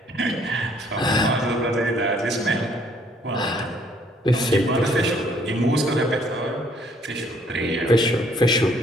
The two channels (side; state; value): both; normal; correlation 0.63